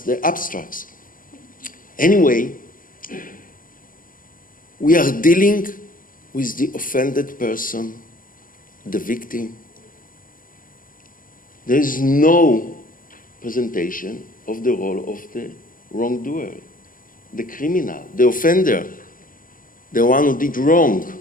abstracts. Anyway, we are dealing with the offended person, the victim. There is no presentation of the role of the wrongdoer, the criminal, the offender, the one who did wrong.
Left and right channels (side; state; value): right; late; 0.40 ms